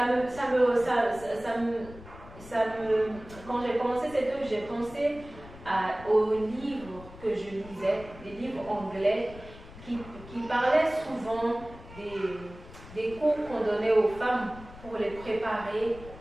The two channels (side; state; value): left; noise; rumble, 17 dB below the sound